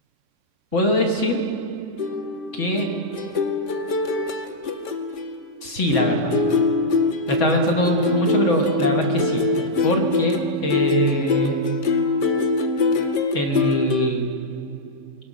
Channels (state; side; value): late; left; 3.6 ms